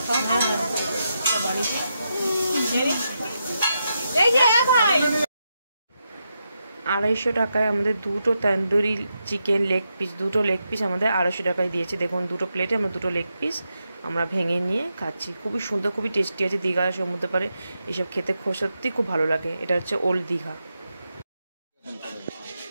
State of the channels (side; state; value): both; inverted; correlation -0.85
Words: 250 টাকায় আমাদের 2টো তন্দুরি চিকেন লেগ পিস, 2টো লেগ পিস আমাদের 250 টাকায় দিয়েছে। দেখুন 2টো প্লেটে আমরা 2টো লেগ পিস আমরা ভেঙে নিয়ে খাচ্ছি। খুবই সুন্দর, খুবই টেস্টি আছে। দীঘা সমুদ্র পারে এসব খেতে সত্যি খুব ভালো লাগে। এটা হচ্ছে ওল্ড দীঘা।